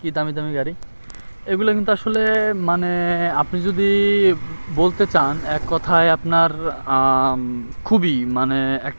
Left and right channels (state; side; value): inverted; both; correlation -1.00